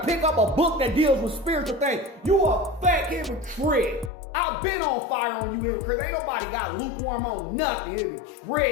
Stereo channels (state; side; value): drops out; right; at 4.1 s